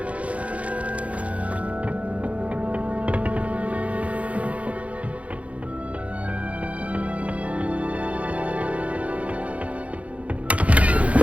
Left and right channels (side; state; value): left; late; 0.065 ms